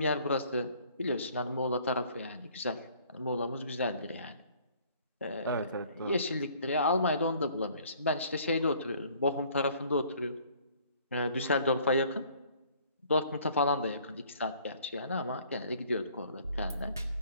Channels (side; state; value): both; inverted; correlation -0.57